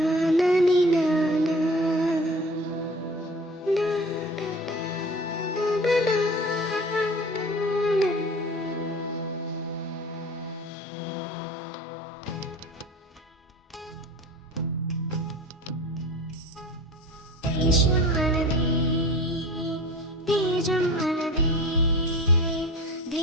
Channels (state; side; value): normal; both; correlation 0.39